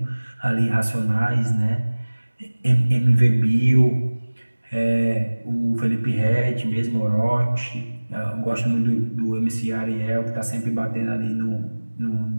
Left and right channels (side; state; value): both; inverted; correlation -1.00